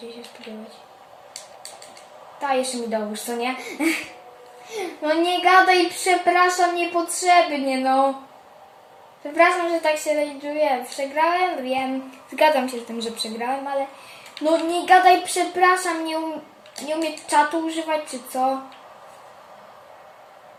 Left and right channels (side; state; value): both; identical; correlation 1.00